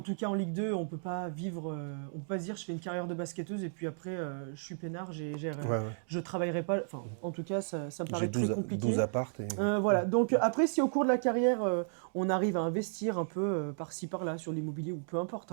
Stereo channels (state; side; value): silent; left; digital silence